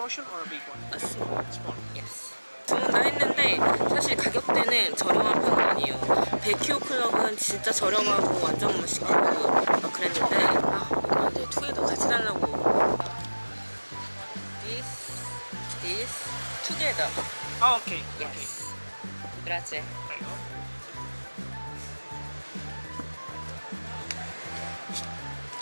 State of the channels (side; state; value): both; inverted; correlation -1.00